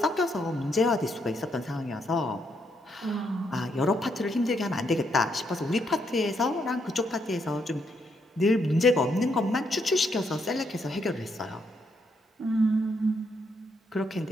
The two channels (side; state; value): both; normal; correlation 0.76